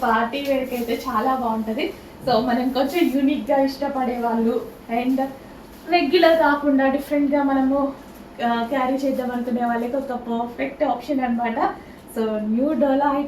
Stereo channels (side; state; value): both; identical; correlation 1.00